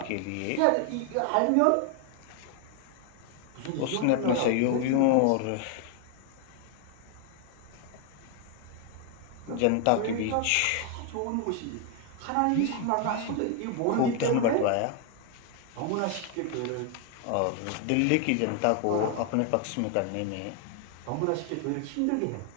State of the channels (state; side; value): different; both; correlation 0.00